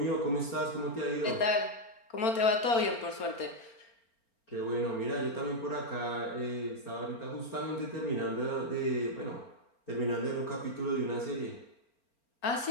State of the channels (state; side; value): late; right; 4.4 ms